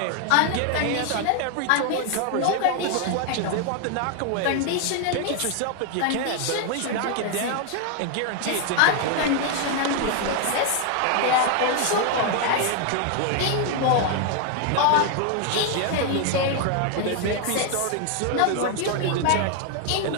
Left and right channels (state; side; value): different; both; correlation 0.00